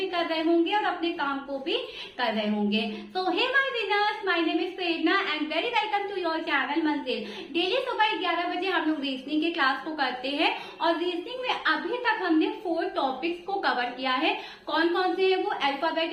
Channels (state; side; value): identical; both; correlation 1.00